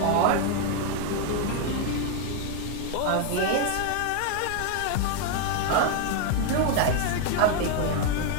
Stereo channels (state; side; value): different; both; correlation 0.01